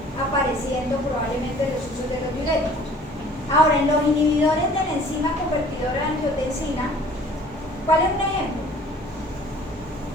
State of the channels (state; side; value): normal; both; correlation 0.51